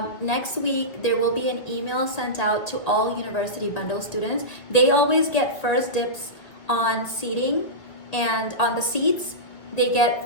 Next week, there will be an email sent out to all University Bundle students. They always get first dibs on seating, and on the seats, they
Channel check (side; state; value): right; late; 2.0 ms